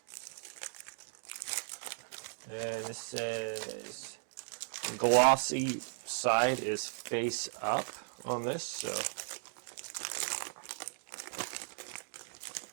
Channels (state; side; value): silent; left; digital silence